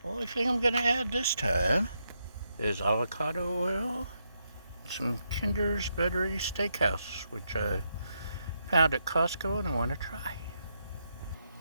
only thing I'm gonna add this time is avocado oil, some Kinder's Buttery Steakhouse, which I found at Costco and I want to try.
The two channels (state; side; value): inverted; both; correlation -0.81